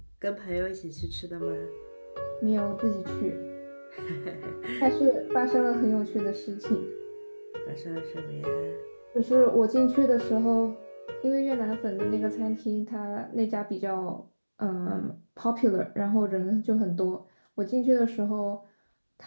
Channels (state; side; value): inverted; both; correlation -1.00